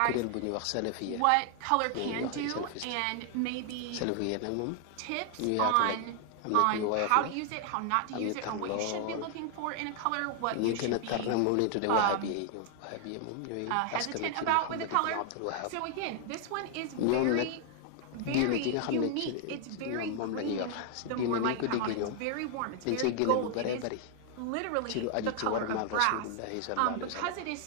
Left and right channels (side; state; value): both; different; correlation 0.00